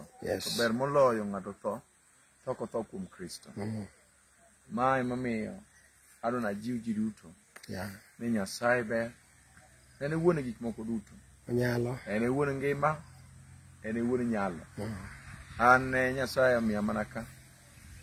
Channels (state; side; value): identical; both; correlation 1.00